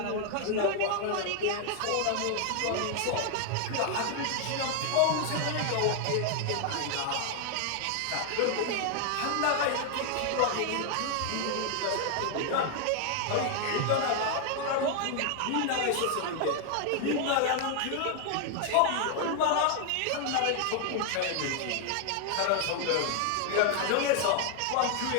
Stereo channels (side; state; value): both; different; correlation 0.00